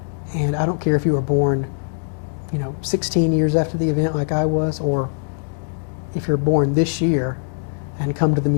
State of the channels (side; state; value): right; silent; digital silence